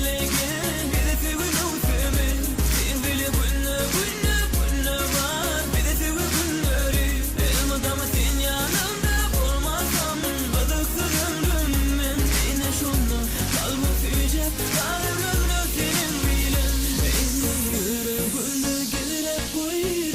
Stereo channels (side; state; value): both; identical; correlation 1.00